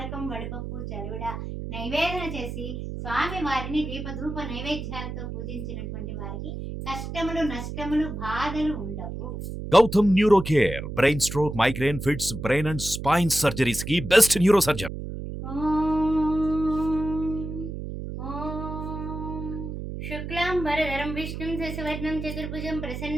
వడపప్పు చలివిడ నైవేదన చేసి స్వామి వారిని దీపధూప నైవేద్యాలతో పూజించినటువంటి వారికి కష్టములు నష్టములు బాధలు ఉండవు. Gautam neuro care brain stroke migraine fits brain and spine surgeries కి బెస్ట్ న్యూరో సర్జన్. శుక్లాంబరధరం విష్ణుం శశివర్ణం చతుర్భుజం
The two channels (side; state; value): right; noise; hum, 7 dB below the sound